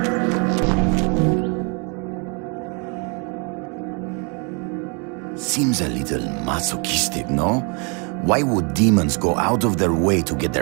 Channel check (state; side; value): quieter; left; 34.8 dB